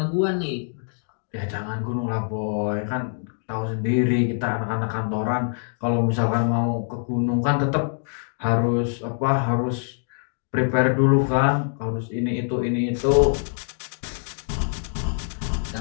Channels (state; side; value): silent; right; digital silence